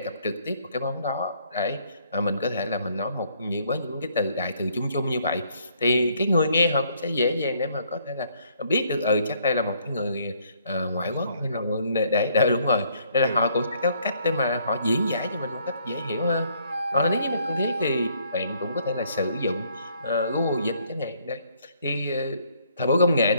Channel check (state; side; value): inverted; both; correlation -0.66